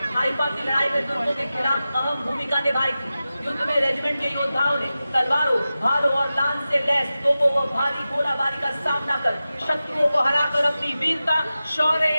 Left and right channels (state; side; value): inverted; both; correlation -0.94